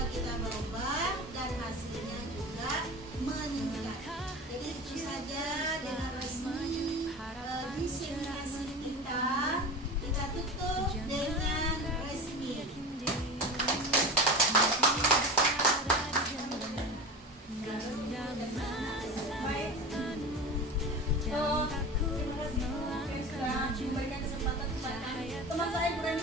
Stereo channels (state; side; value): normal; both; correlation 0.30